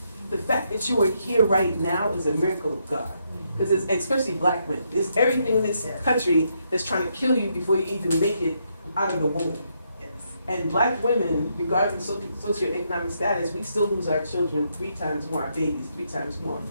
The fact that you are here right now is a miracle of God. Because especially black women, there's everything in this country that's trying to kill you before you even make it out of the womb. Yes. And black women, regardless of socioeconomic status, we still lose our children 3 times more, our babies 3 times more.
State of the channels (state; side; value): inverted; both; correlation -0.77